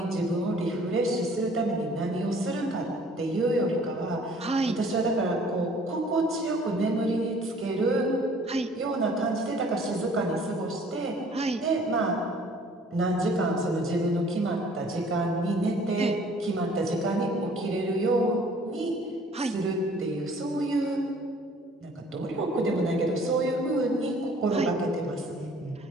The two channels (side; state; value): both; normal; correlation 0.54